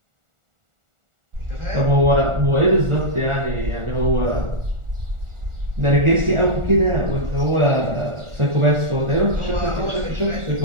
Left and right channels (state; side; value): late; left; 1.4 ms